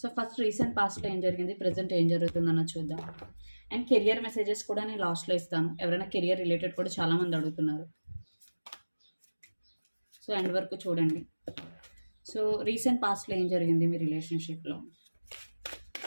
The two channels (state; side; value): inverted; both; correlation -1.00